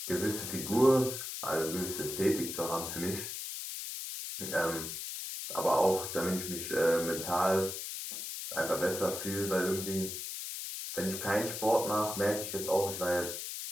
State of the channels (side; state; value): left; noise; hiss, 6 dB below the sound